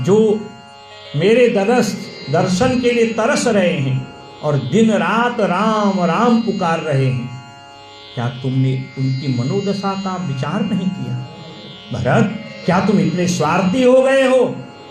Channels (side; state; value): both; identical; correlation 1.00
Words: जो मेरे दर्शन के लिए तरस रहे हैं और दिन रात राम राम पुकार रहे हैं, क्या तुमने उनकी मनोदशा का विचार नहीं किया? भरत, क्या तुम इतने स्वार्थी हो गए हो